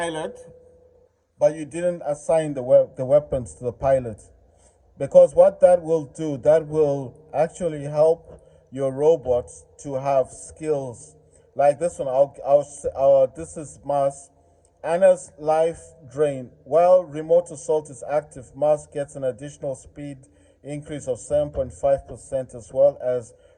but you didn't assign the weapons to the pilot. Because what that will do, that will actually help your robots to have skills like this one. This is Mars. Anna's life drain. While remote assault is active, Mars gets an additional speed increase of 7.5%, as well as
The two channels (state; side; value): identical; both; correlation 1.00